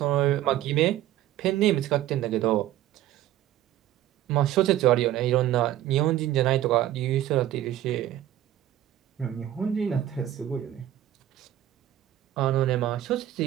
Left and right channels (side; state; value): left; quieter; 12.9 dB